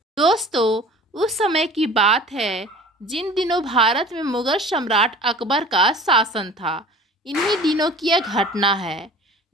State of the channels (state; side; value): normal; both; correlation 0.43